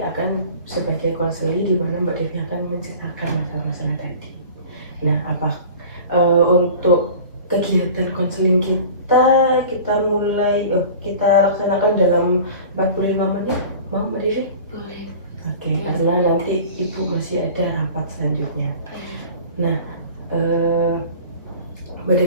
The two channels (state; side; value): inverted; both; correlation -0.41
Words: sebagai konseli, di mana Mbak Devi akan menceritakan masalah-masalah tadi. Nah, untuk kegiatan konseling kita mulai kita laksanakan dalam 45 menit, mau Mbak Devi? Boleh. Oke, karena nanti ibu masih ada rapat selanjutnya. Nah, Mbak